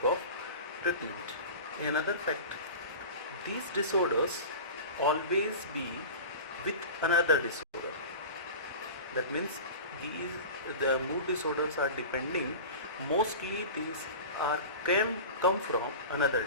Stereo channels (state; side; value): inverted; both; correlation -0.33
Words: of treatment. Another fact, these disorders always be with another disorder. That means the mood disorders are depending, mostly these are can come from another